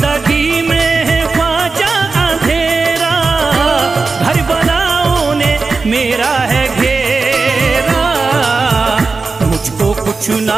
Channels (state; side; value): quieter; left; 4.2 dB